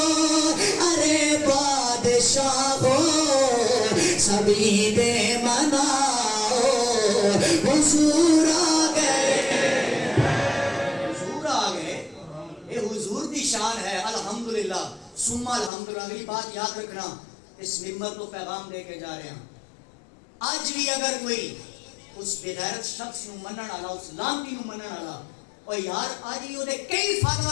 ارے بادشاہ ہو سبھی دے مناؤ حضور آ گئے حضور آ گئے یہ حضور دی شان ہے الحمدللہ ثم الحمدللہ اگلی بات یاد رکھنا اس ممبر کو پیغام دے کے جا رہے ہیں آج بھی اگر کوئی اس بغیرت شخص نو منن والا اس لانتی نو منن والا اور یار آج بھی دے کئی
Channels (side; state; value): right; drops out; at 15.7 s